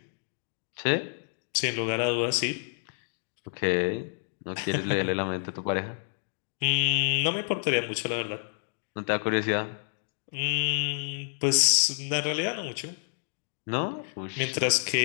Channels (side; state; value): right; silent; digital silence